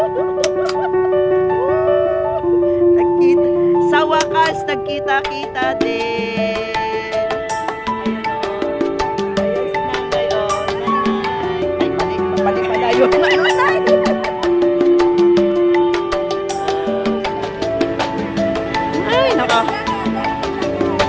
Nagkita. Sa wakas, nagkita-kita din. Ayan si nanay, oh. Nanay. Ay, mali pala yun. Nanay. Ay, naka.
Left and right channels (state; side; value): identical; both; correlation 1.00